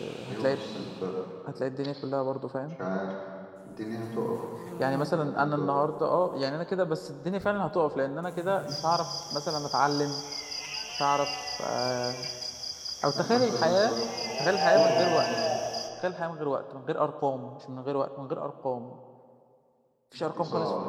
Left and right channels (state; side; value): identical; both; correlation 1.00